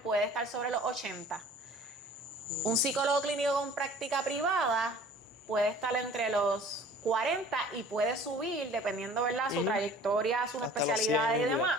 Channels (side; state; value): both; normal; correlation 0.48